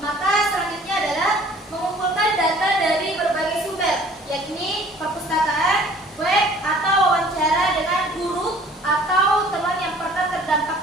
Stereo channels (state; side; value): normal; both; correlation 0.52